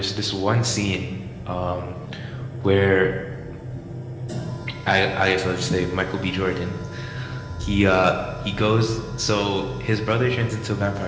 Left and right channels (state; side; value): identical; both; correlation 1.00